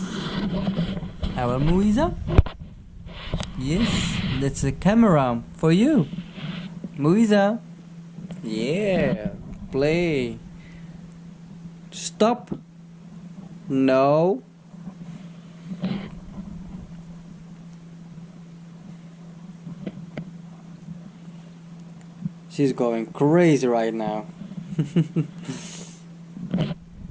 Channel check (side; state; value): both; identical; correlation 1.00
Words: Our Moiza? Yes, that's a camera for you. Moiza? Yeah, play. Stop. No. She's going crazy right now.